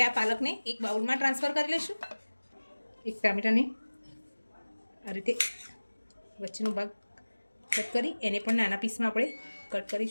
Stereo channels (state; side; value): inverted; both; correlation -1.00